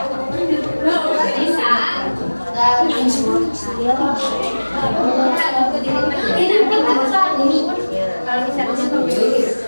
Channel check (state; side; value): inverted; both; correlation -1.00